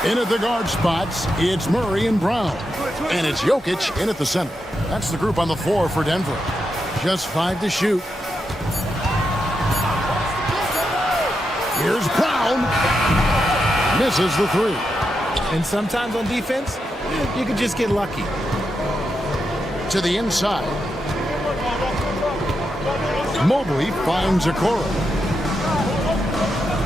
In at the guard spots, it's Murray and Brown. And it's Jokic in at the center. That's the group on the floor for Denver. Just 5 to shoot. Here's Brown. Misses the 3. And sometimes on defense, you can just get lucky. To the inside. Mobley finds Okoro.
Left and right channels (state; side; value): normal; both; correlation 0.85